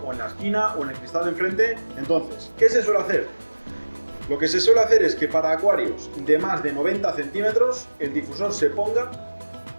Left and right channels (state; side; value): inverted; both; correlation -1.00